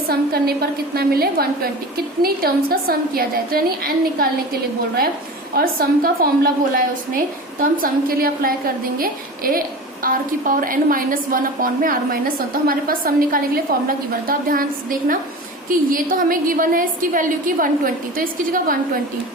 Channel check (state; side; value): normal; both; correlation 0.33